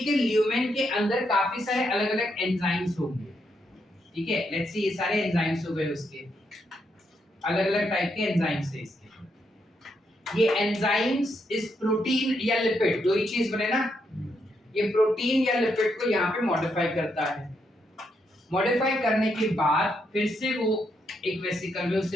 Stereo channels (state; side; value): normal; both; correlation 0.79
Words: ल्यूमेन के अंदर काफी सारे अलग अलग एंजाइम्स होंगे, ठीक है। लेट्स सी, ये सारे एंजाइम्स हो गए उसके, अलग अलग टाइप के एंजाइम्स है इसके। ये एंजाइम्स इस प्रोटीन या लिपिड, दो ही चीज बने ना, ये प्रोटीन या लिपिड को यहाँ पे मॉडिफाई करता है। मॉडिफाई करने के बाद फिर से वो एक वेसिकल में